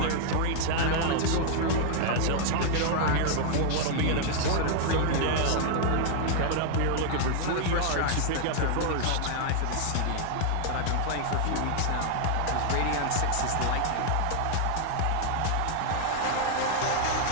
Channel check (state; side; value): different; both; correlation -0.01